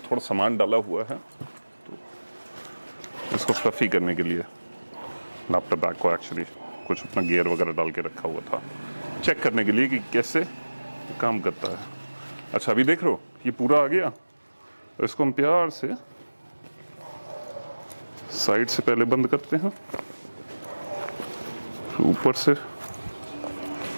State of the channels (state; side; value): inverted; both; correlation -1.00